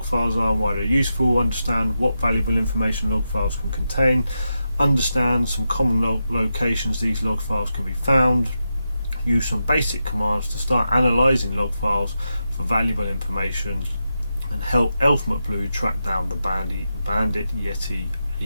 files are and why they're useful, understand what valuable information log files can contain, understand some common locations these log files can be found, use some basic commands to start analysing log files for valuable information, and help Elfmet Blue track down the Bandit Yeti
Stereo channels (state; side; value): inverted; both; correlation -0.88